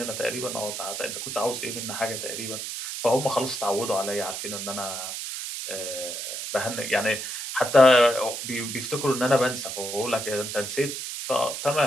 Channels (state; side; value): noise; right; hiss, 6 dB below the sound